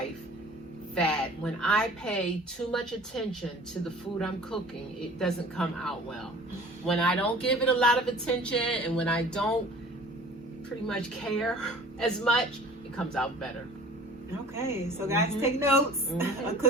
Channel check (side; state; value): both; normal; correlation 0.46